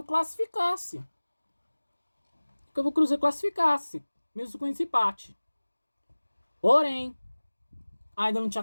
classificasse. Mesmo com esse empate. Porém, ainda não tinha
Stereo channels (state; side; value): inverted; both; correlation -1.00